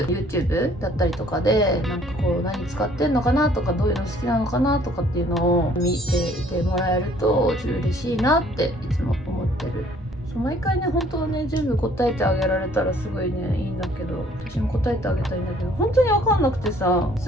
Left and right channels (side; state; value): both; normal; correlation 0.59